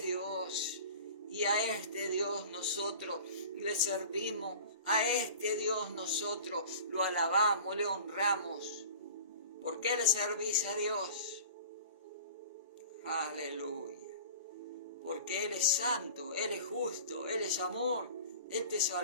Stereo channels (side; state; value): both; inverted; correlation -0.40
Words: Dios. Y a este Dios nosotros le servimos. A este Dios nosotros lo alabamos, le honramos. ¿Por qué le servís a Dios? Aleluya. Porque Él es santo, Él es justo, Él es amor, Él te